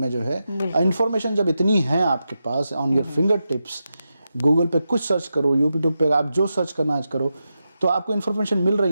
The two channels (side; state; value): both; inverted; correlation -0.89